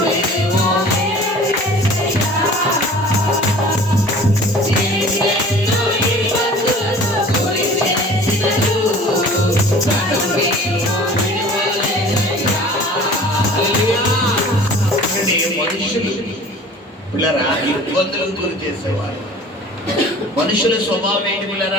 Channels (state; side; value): normal; both; correlation 0.45